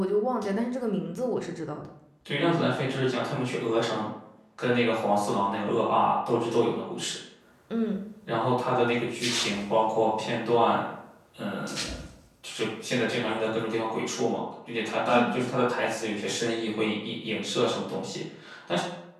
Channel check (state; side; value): identical; both; correlation 1.00